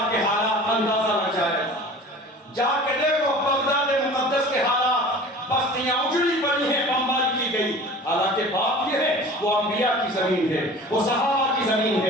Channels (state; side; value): normal; both; correlation 0.41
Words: کے حالات، اندازہ لگ جائے گا، جا کے دیکھو بغداد مقدس کے حالات، بستیاں اجڑی پڑی ہیں، بمباری کی گئی، حالانکہ بات یہ ہے وہ انبیاء کی زمین ہے، وہ صحابہ کی زمین